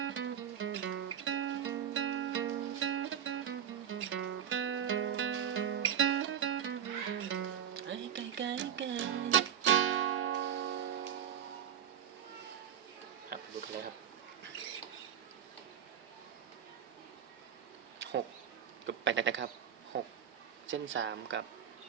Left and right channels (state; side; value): quieter; left; 9.0 dB